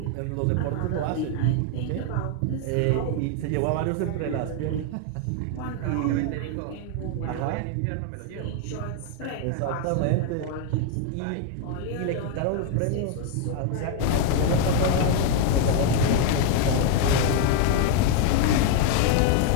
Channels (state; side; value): different; both; correlation 0.00